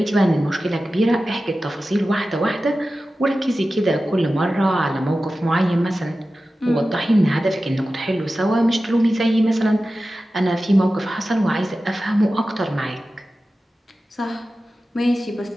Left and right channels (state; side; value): normal; both; correlation 0.94